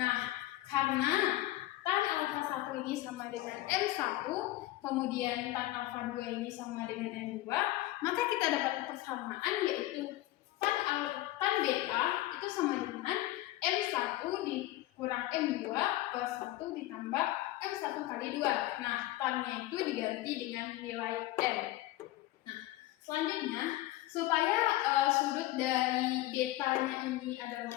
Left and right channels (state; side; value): quieter; right; 16.5 dB